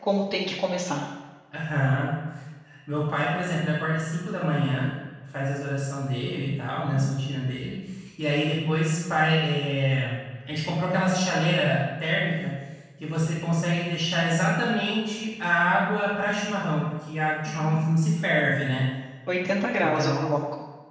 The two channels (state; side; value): identical; both; correlation 1.00